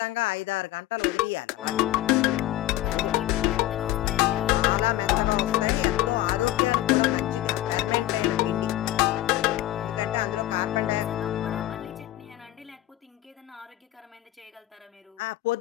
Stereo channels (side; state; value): right; quieter; 15.3 dB